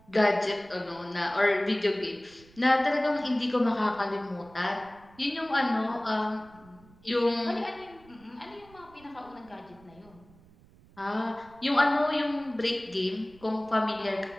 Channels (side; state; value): right; noise; rumble, 25 dB below the sound